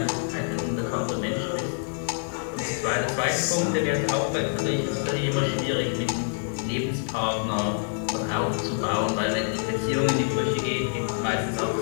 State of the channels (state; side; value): silent; right; digital silence